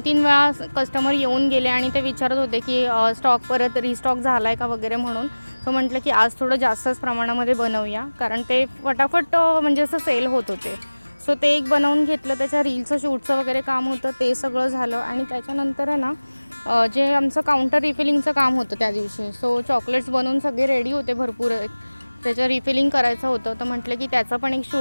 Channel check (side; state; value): both; inverted; correlation -1.00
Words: वेळा कस्टमर येऊन गेले आणि ते विचारत होते की स्टॉक परत रिस्टॉक झाला आहे का वगैरे म्हणून. सो म्हटलं की आज थोडं जास्तच प्रमाणामध्ये बनवूया, कारण ते फटाफट म्हणजे असं सेल होत होते. सो ते एक बनवून घेतलं. त्याच्या रीलचं शूटचं वगैरे काम होतं, ते सगळं झालं. आणि त्याच्यानंतर आहे ना जे आमचं काउंटर रिफिलिंगचं काम होतं त्या दिवशी. सो चॉकलेट्स बनवून सगळे रेडी होते भरपूर. त्याचं रिफिलिंग करायचं होतं, तर म्हटलं की त्याचं पण एक